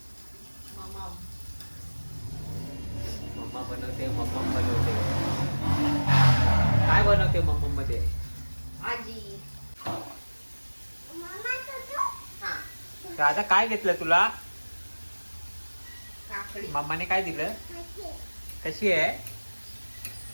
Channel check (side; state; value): both; inverted; correlation -1.00